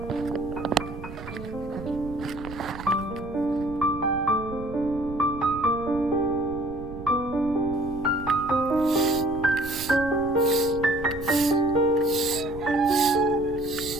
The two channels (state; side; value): noise; right; rumble, 13 dB below the sound